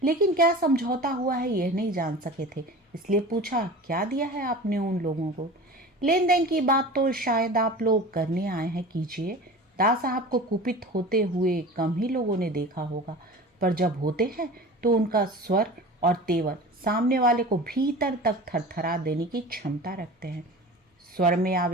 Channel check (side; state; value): both; normal; correlation 0.36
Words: लेकिन क्या समझौता हुआ है यह नहीं जान सके थे। इसलिए पूछा, क्या दिया है आपने उन लोगों को? लेन देन की बात तो शायद आप लोग करने आए हैं, कीजिए। दास साहब को कुपित होते हुए कम ही लोगों ने देखा होगा, पर जब होते हैं तो उनका स्वर और तेवर सामने वाले को भीतर तक थरथरा देने की क्षमता रखते हैं। स्वर में